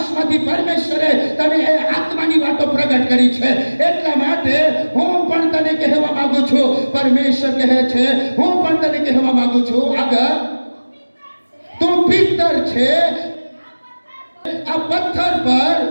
પરમેશ્વરે તને એ આત્માની વાતો પ્રગટ કરી છે. એટલા માટે હું પણ તને કહેવા માંગુ છું, પરમેશ્વર કહે છે, હું પણ તને કહેવા માંગુ છું, આગળ તું પિત્તર છે, આ પથ્થર પર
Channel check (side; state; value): both; inverted; correlation -1.00